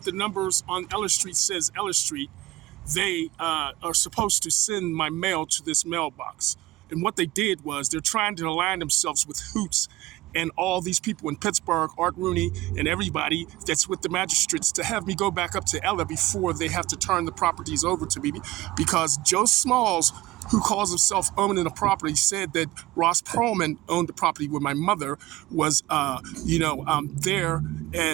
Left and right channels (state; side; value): quieter; left; 17.4 dB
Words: the numbers on Ellis Street says Ellis Street. They are supposed to send my mail to this mailbox. And what they did was they're trying to align themselves with Hoots and all these people in Pittsburgh, Art Rooney, and everybody that's with the magistrates to have me go back up to Ella before they have to turn the properties over to me, because Joe Smalls, who calls himself owning the property, said that Ross Perlman owned the property where my mother was, there